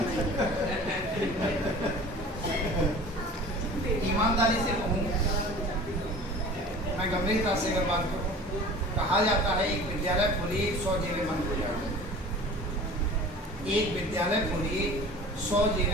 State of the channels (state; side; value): normal; both; correlation 0.42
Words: ईमानदारी से कहूँ, मैं गंभीरता से अगर बात करूँ, कहा जाता है एक विद्यालय खोलिए 100 जेलें बंद हो जाएंगी। एक विद्यालय खोलिए 100